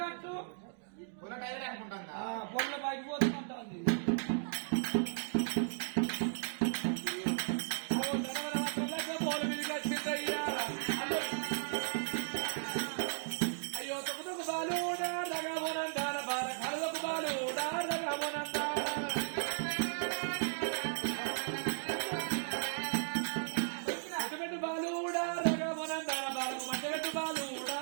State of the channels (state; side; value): silent; left; digital silence